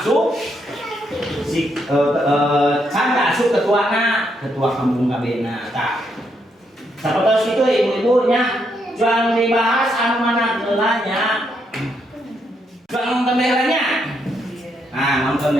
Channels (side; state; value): both; normal; correlation 0.77